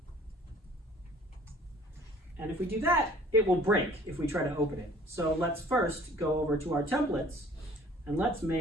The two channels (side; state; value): both; normal; correlation 0.52